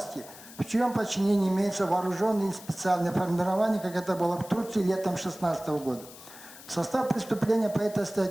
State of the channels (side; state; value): left; noise; hiss, 18 dB below the sound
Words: в чьем подчинении имеется вооруженное и специальное формирование, как это было в Турции летом 2016 года. В состав преступления по этой